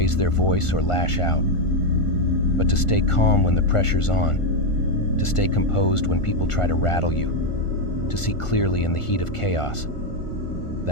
their voice, or lash out. But to stay calm when the pressure's on, to stay composed when people try to rattle you, to see clearly in the heat of chaos,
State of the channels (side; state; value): right; late; 1.5 ms